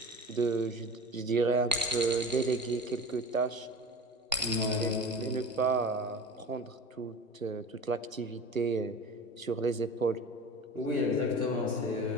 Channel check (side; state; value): both; normal; correlation 0.35